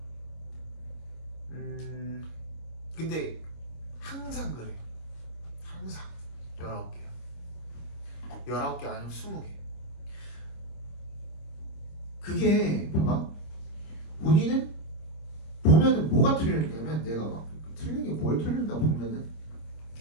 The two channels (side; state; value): right; late; 26 ms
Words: 근데 항상 그래. 항상 19개야. 19개 아니면 20개. 그게 봐봐. 본인은 보면은 뭐가 틀리냐면 내가 막 틀린 게 뭘 틀린다 보면은